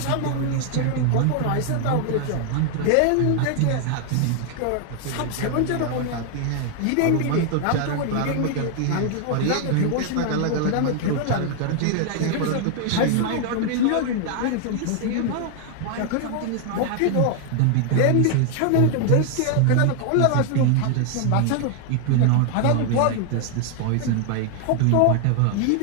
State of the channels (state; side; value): different; both; correlation 0.00